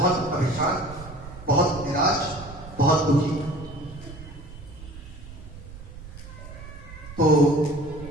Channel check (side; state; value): right; noise; rumble, 15 dB below the sound